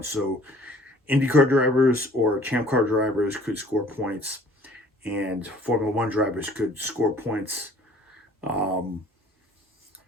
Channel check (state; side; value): normal; both; correlation 0.54